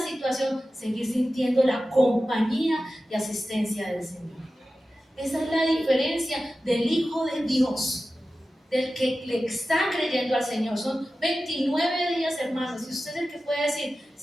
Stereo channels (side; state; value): both; normal; correlation 0.94